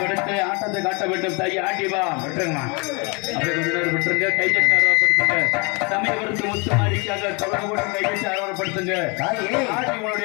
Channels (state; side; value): quieter; right; 30.6 dB